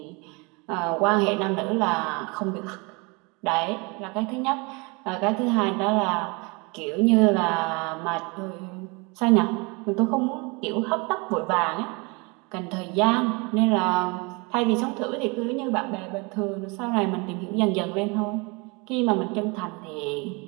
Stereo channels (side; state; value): left; quieter; 28.8 dB